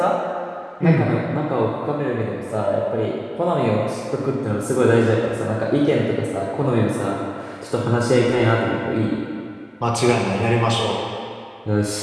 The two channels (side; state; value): both; identical; correlation 1.00